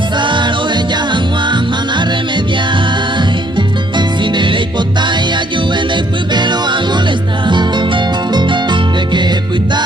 o ella agua mana remediar. Sin de hipotaya de pelo a molestar. De que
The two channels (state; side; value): normal; both; correlation 0.66